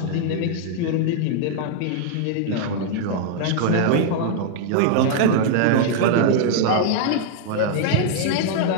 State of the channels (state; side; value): different; both; correlation -0.01